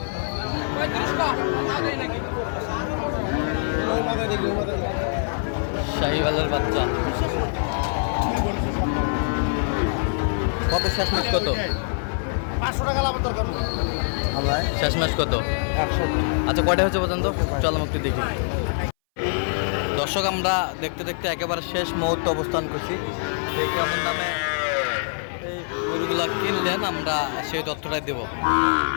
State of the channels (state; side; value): silent; right; 60 dB below the other